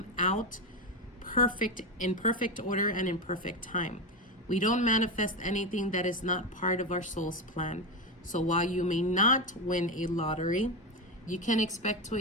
out perfect, in perfect order and in perfect time. We don't manifest anything that is not part of our soul's plan. So while you may not win a lottery, you can expect to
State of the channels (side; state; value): both; normal; correlation 0.15